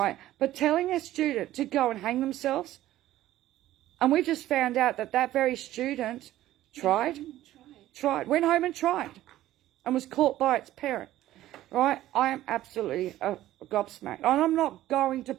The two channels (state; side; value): quieter; left; 14.3 dB